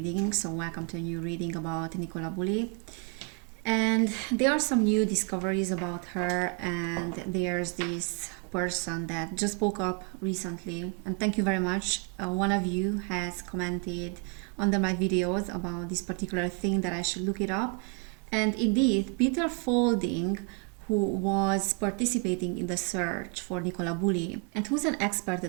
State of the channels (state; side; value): quieter; left; 36.7 dB